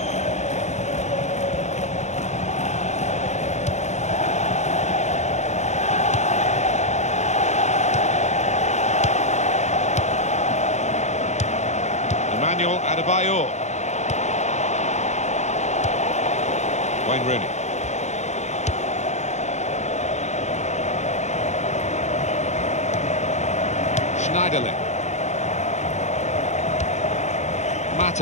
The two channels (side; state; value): right; late; 0.33 ms